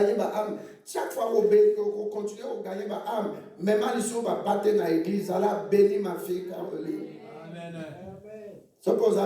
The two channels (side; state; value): both; identical; correlation 1.00